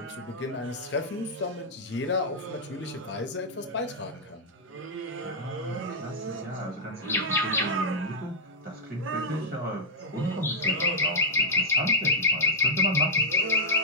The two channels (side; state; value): both; normal; correlation -0.06